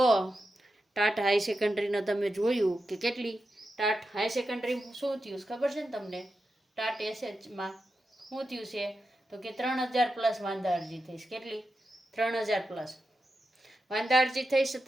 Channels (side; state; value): both; normal; correlation 0.89